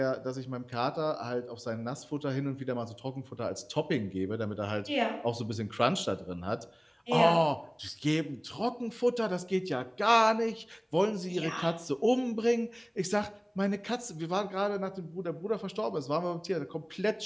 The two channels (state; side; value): identical; both; correlation 1.00